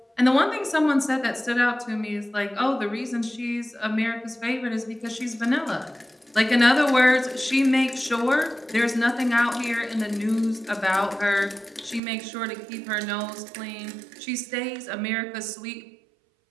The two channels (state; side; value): drops out; left; at 12.0 s